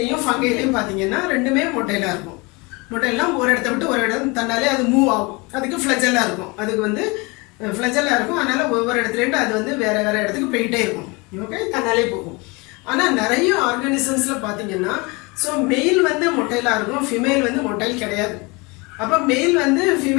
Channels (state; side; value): quieter; right; 27.1 dB